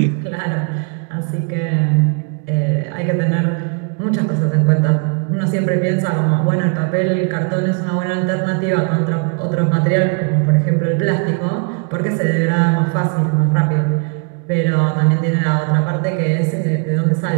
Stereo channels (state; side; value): quieter; left; 38.4 dB